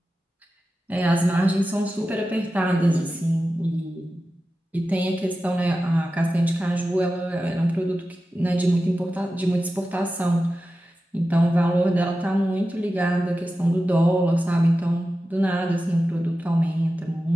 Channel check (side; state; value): both; normal; correlation 0.93